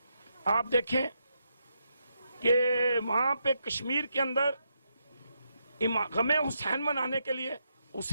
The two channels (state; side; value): inverted; both; correlation -0.81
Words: آپ دیکھیں کہ وہاں پہ کشمیر کے اندر غم حسین منانے کے لیے،